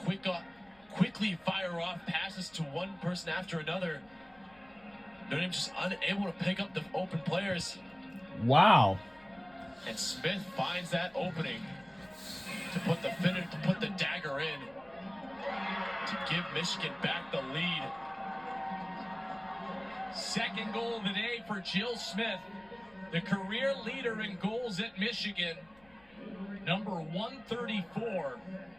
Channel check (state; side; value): noise; left; rumble, 30 dB below the sound